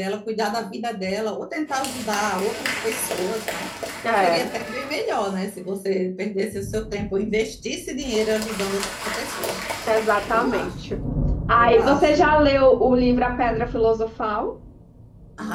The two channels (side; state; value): both; identical; correlation 1.00